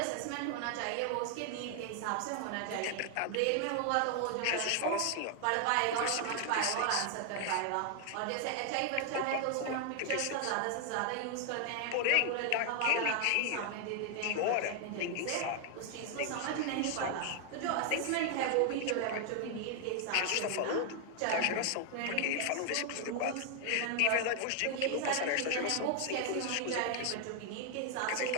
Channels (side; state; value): both; different; correlation 0.00